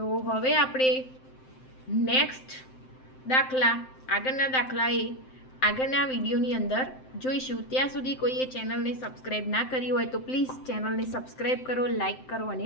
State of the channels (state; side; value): late; right; 7.7 ms